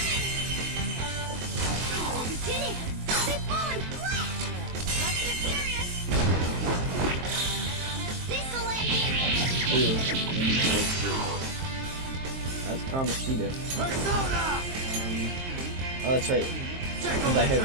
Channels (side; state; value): left; late; 23 ms